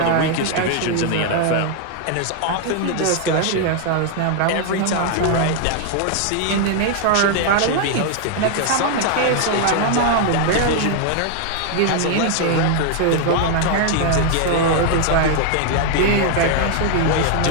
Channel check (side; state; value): both; different; correlation 0.00